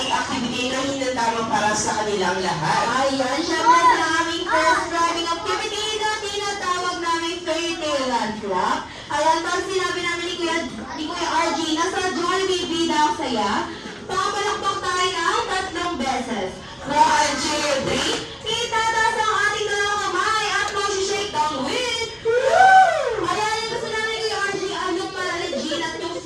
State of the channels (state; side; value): identical; both; correlation 1.00